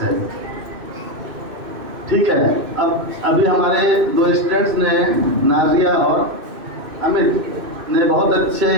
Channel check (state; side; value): late; left; 2.6 ms